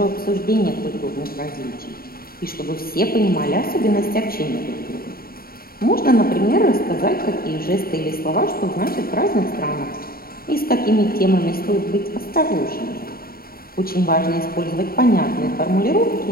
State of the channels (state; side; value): late; right; 0.43 ms